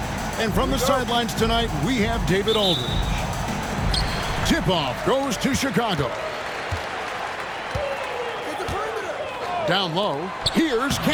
And from the sidelines tonight, we have David Aldridge. Tip-off goes to Chicago. Down low, here's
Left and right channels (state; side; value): identical; both; correlation 1.00